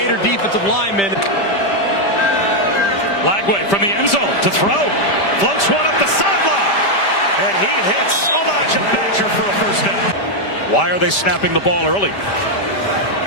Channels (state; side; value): late; right; 5.1 ms